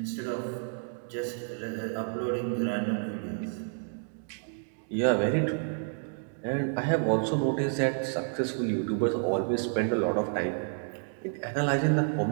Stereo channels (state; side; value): silent; left; digital silence